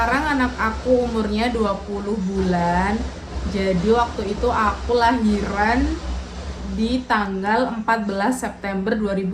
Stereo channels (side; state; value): both; identical; correlation 1.00